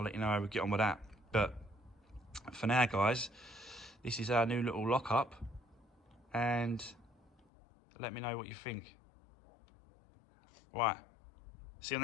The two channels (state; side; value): drops out; right; at 7.5 s